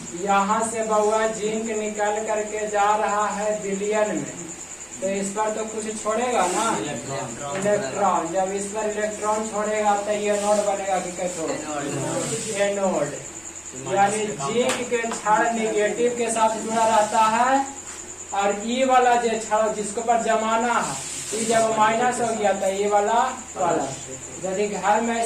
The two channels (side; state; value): both; identical; correlation 1.00